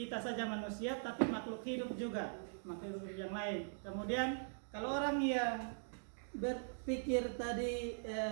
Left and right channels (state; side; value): silent; left; digital silence